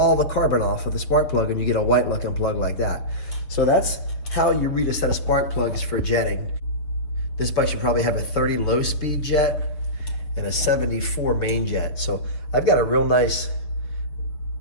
the carbon off of the spark plug, and you get a white looking plug like that. So that's how you read a set of spark plugs for jetting. This bike should probably have a 30 low speed jet and a 74 main jet. So I've got a real nice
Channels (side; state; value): right; late; 6.5 ms